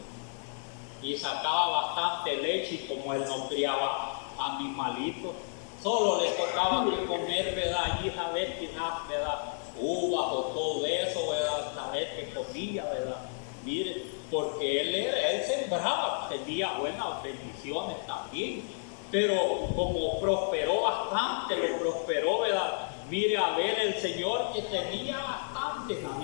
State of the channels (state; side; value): silent; right; digital silence